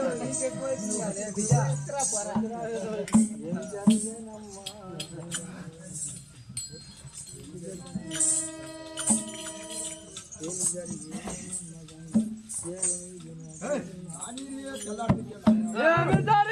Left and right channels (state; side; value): identical; both; correlation 1.00